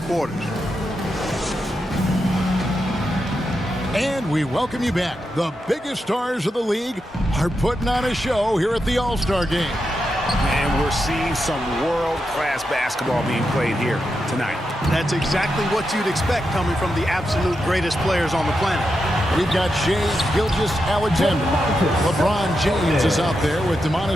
quarters. And we welcome you back. The biggest stars of the league are putting on a show here at the All-Star game. And we're seeing some world-class basketball being played here tonight. That's exactly what you'd expect coming from the absolute greatest players on the planet. We've got Shai Gilgeous-Alexander. LeBron James is out there with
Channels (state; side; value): normal; both; correlation 0.86